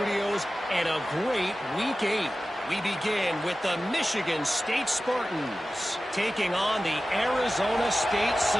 and a great Week 8. We begin with the Michigan State Spartans taking on the Arizona State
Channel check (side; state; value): both; normal; correlation 0.95